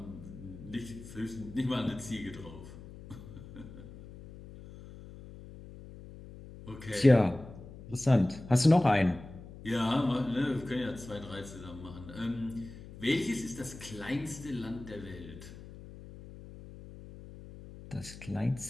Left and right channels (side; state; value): left; noise; hum, 15 dB below the sound